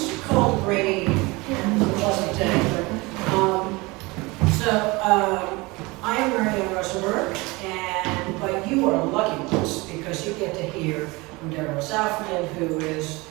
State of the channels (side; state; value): left; quieter; 23.9 dB